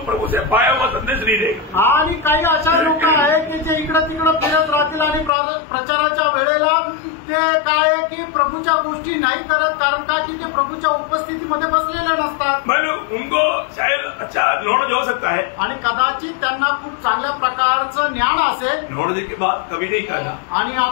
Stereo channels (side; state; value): right; drops out; at 5.3 s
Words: प्रभु से पाया हुआ संदेश नहीं रहेगा. आणि काही अशा लोक आहेत की जे इकडे तिकडे फिरत राहतील आणि प्रचाराच्या वेळेला ते काय की प्रभूच्या गोष्टी नाही करत. कारण काय की ते प्रभूच्या उपस्थितीमध्ये बसलेले नसतात. मतलब उनको शायद अच्छा नॉलेज हो सकता है आणि कदाचित त्यांना खूप चांगल्या प्रकारचं ज्ञान असेल. नॉलेज की बात कभी नहीं करना. आणि